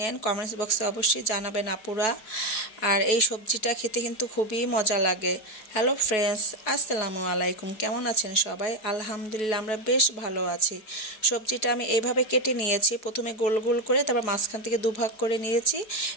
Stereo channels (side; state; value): right; late; 4.7 ms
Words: কমেন্টস বক্সে অবশ্যই জানাবেন আপুরা। আর এই সবজিটা খেতে কিন্তু খুবই মজা লাগে। হ্যালো ফ্রেন্ডস, আসসালামু আলাইকুম। কেমন আছেন সবাই? আলহামদুলিল্লাহ আমরা বেশ ভালো আছি। সবজিটা আমি এইভাবে কেটে নিয়েছি, প্রথমে গোল গোল করে, তারপর মাঝখান থেকে দুভাগ করে নিয়েছি